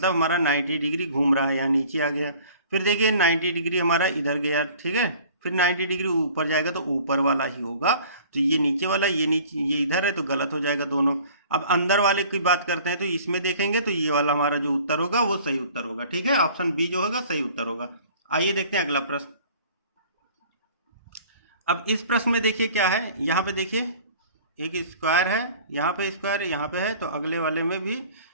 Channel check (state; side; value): inverted; both; correlation -0.49